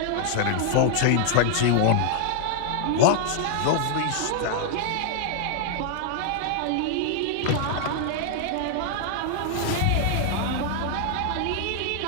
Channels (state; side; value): different; both; correlation 0.00